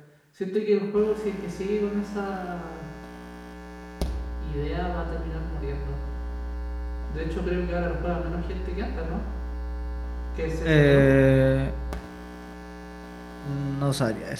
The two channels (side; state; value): both; identical; correlation 1.00